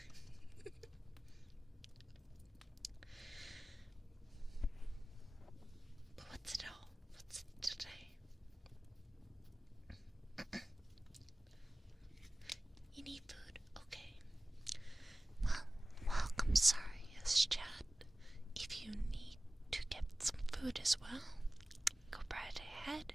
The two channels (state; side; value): normal; both; correlation 0.97